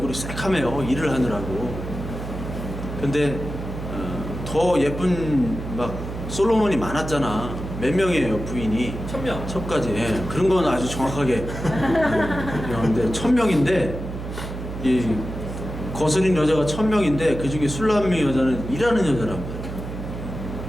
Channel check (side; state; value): right; noise; hum, 8 dB below the sound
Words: 새카매요, 일을 하느라고. 근데 더 예쁜 막 솔로몬이 많았잖아. 몇 명이에요, 부인이? 1000명. 첩까지. 예, 그런 건 아주 정확하게. 근데 1000명인데 이 거스린 여자가 1000명인데 그 중에 술람미 여자는 일하는 여자란 말이에요.